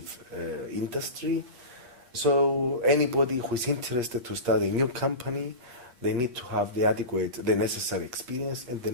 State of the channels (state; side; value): late; left; 8.4 ms